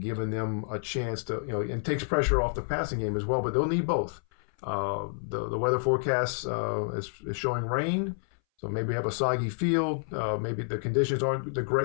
them a chance to, and takes pressure off the passing game as well. But they'll need both. The weather forecast is showing rain, so maybe have a soggy field. Maybe the conditions aren't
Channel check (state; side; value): silent; right; 58 dB below the other